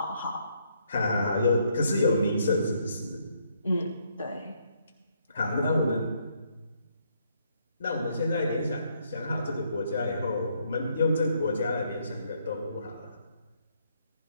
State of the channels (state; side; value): inverted; both; correlation -0.72